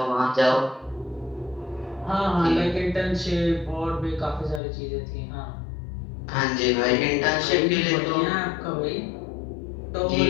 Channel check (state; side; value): drops out; right; at 4.6 s